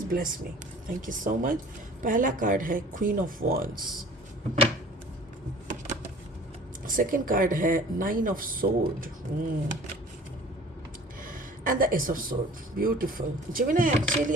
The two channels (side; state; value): both; normal; correlation 0.47